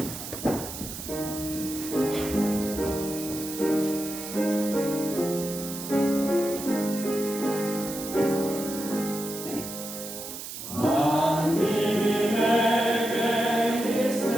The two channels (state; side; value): noise; right; hiss, 9 dB below the sound